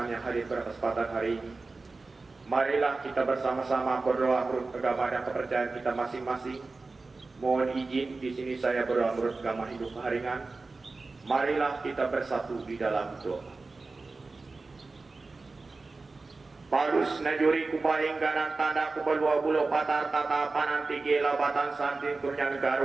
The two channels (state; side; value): quieter; left; 3.7 dB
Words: yang hadir pada kesempatan hari ini, marilah kita bersama-sama berdoa menurut agama dan kepercayaan kita masing-masing. Mohon izin di sini saya berdoa menurut agama Hindu Keharingan. Marilah kita bersatu di dalam doa. Parus najuri kupaing ganan tanda kubalua bulo patar tata pananti gela batan santin turnya